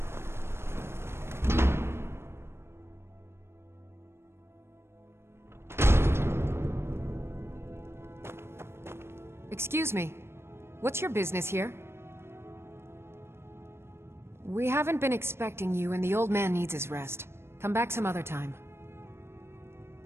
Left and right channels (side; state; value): left; late; 0.12 ms